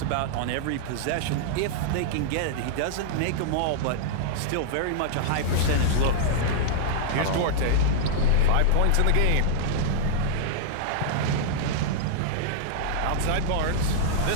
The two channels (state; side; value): different; both; correlation -0.02